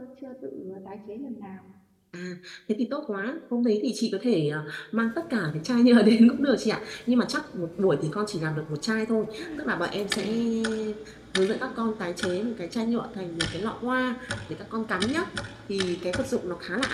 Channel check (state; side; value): identical; both; correlation 1.00